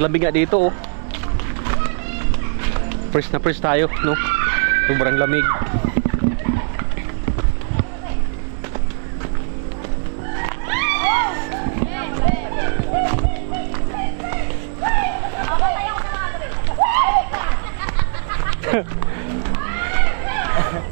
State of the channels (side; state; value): left; silent; digital silence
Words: lamig nga dito, Fresh na fresh tayo, no? Sobrang lamig.